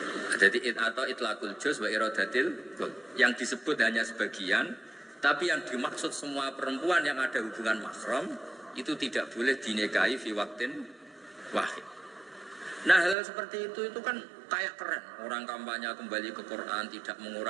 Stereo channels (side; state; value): left; drops out; at 13.2 s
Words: Jadi atau itlaqul juz wa iradatil kul. Yang disebut hanya sebagian, tapi yang dimaksud semua perempuan yang ada hubungan mahram itu tidak boleh dinikahi fi waqtin wahid. Nah, hal seperti itu kan kayak keren. Orang kampanye kembali ke Quran, tidak